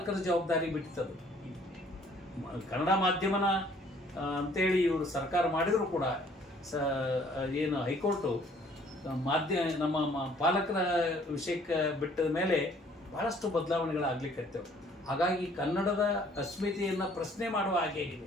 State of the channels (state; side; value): normal; both; correlation 0.59